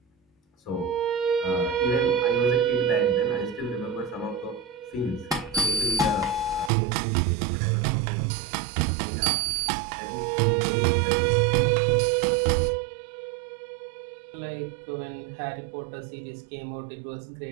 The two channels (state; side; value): drops out; left; at 6.7 s